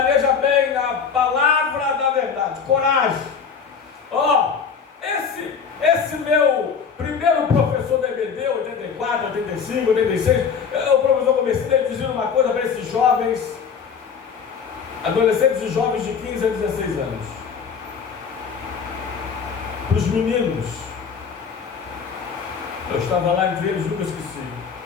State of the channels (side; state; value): right; quieter; 6.4 dB